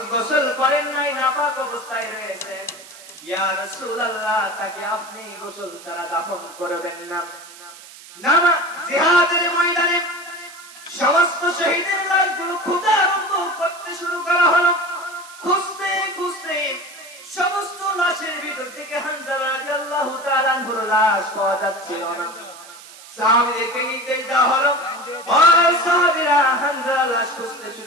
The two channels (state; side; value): noise; right; hiss, 18 dB below the sound